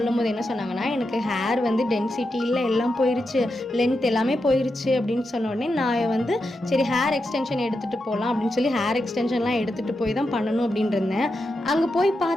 போது என்ன சொன்னாங்கன்னா, எனக்கு ஹேர் வந்து டென்சிட்டி இல்லை, எல்லாம் போயிருச்சு, லென்த் எல்லாமே போயிருச்சு அப்படின்னு சொன்ன உடனே நான் வந்து சரி ஹேர் எக்ஸ்டென்ஷன் எடுத்துகிட்டு போகலாம் அப்படின்னு சொல்லி ஹேர் எக்ஸ்டென்ஷன்லாம் எடுத்துகிட்டு போய் தான் பண்ணணும் அப்படின்னு இருந்தேன். அங்கே போய்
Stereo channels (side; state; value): both; normal; correlation 0.87